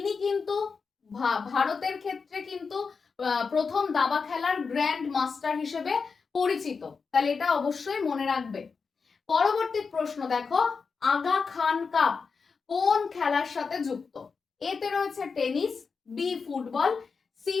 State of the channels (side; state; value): right; quieter; 5.1 dB